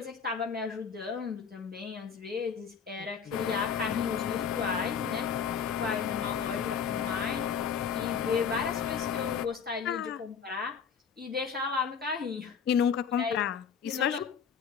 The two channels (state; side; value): quieter; right; 6.9 dB